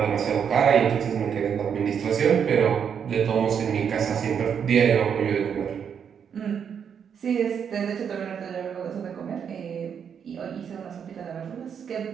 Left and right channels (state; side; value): quieter; left; 7.5 dB